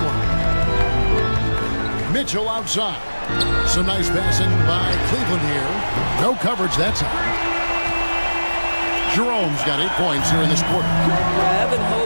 Mitchell outside. Some nice passing by Cleveland here. No coverage that time. Jerome's got 8 points here in this quarter. Evan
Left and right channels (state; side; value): inverted; both; correlation -1.00